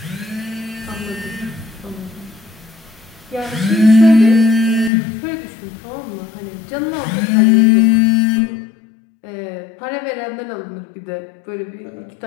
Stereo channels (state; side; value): drops out; right; at 4.9 s